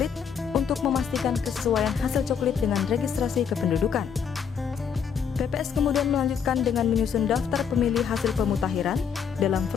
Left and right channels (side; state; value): right; quieter; 7.2 dB